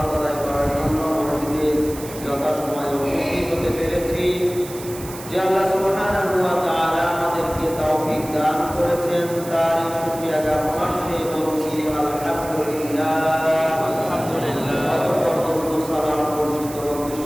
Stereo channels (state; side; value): noise; right; hiss, 14 dB below the sound